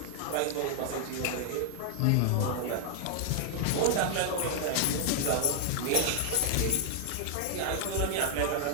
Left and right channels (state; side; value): different; both; correlation 0.00